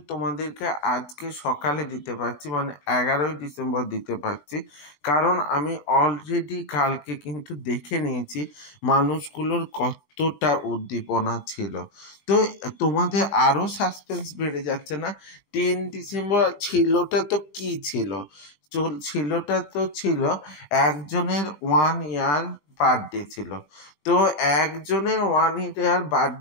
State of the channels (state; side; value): late; right; 20 ms